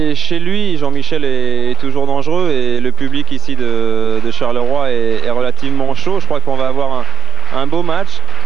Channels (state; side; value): quieter; left; 5.9 dB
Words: lui, Jean-Michel est toujours dangereux et le public ici de Charleroi est relativement chaud. Je crois qu'on va avoir un beau match.